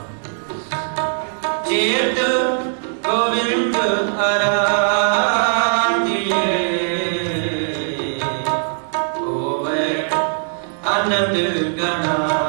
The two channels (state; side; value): silent; left; 61 dB below the other